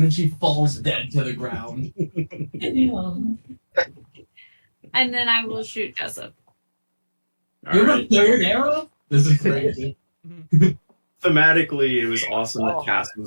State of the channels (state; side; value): inverted; both; correlation -1.00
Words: then she falls dead to the ground. And then I will shoot Jessup. All You have right. a third arrow? This is crazy. Thematically, it was awesome that Cass